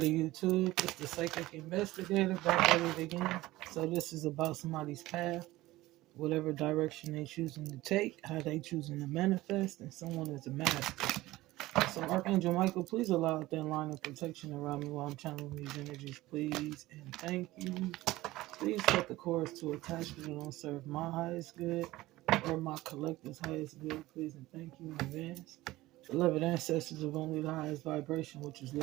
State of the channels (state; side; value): quieter; left; 17.9 dB